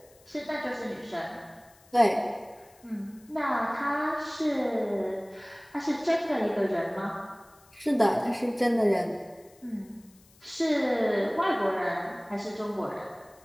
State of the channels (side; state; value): left; noise; hiss, 28 dB below the sound